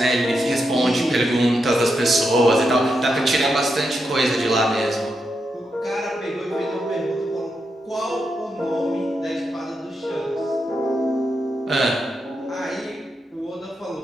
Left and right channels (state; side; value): normal; both; correlation 0.84